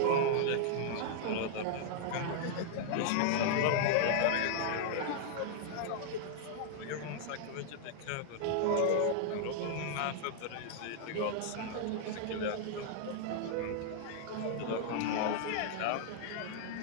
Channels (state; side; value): different; both; correlation -0.01